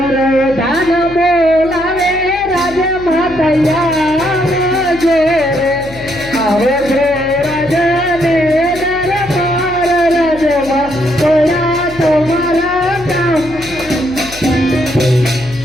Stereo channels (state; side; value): noise; left; hum, 17 dB below the sound